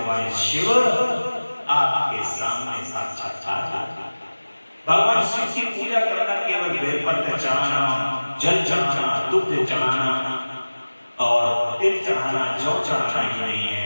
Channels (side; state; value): both; inverted; correlation -1.00